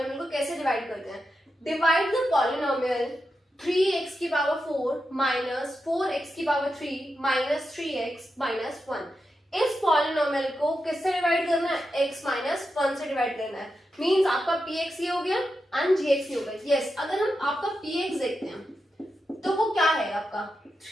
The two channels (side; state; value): both; normal; correlation 0.88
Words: को कैसे डिवाइड करते हैं। डिवाइड द पॉलिनोमियल 3x की पावर 4 माइनस 4x की पावर 3 माइनस 3x माइनस 1। इस पॉलिनोमियल को किससे डिवाइड करना है? x माइनस 1 से डिवाइड करना है। मींस आपका px ये हो गया एंड gx ये हो गया। यस, अगर हम आपका px देखते हैं तो वो क्या है आपका?